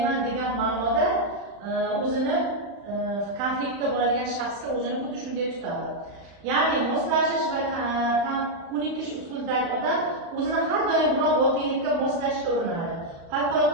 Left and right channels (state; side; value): late; left; 35 ms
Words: degan ma'noda o'zini konfliktda bo'ladigan shaxsga o'zini xuddi shunday tutadi. Ya'ni moslashish va ko'nikish usulidagi odam o'zini har doim biror voqelikka moslashga urinadi.